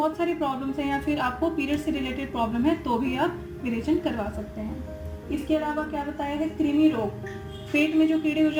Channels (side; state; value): both; identical; correlation 1.00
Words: सारी प्रॉब्लम्स हैं, या फिर आपको पीरियड से रिलेटेड प्रॉब्लम है तो भी आप विरेचन करवा सकते हैं। इसके अलावा क्या बताया है, कृमि रोग, पेट में जो कीड़े हो